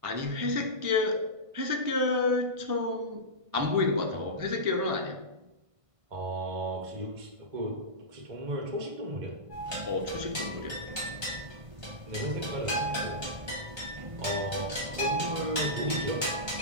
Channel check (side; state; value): left; late; 1.5 ms